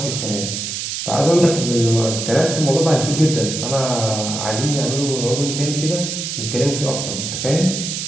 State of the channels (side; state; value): right; noise; hiss, 4 dB below the sound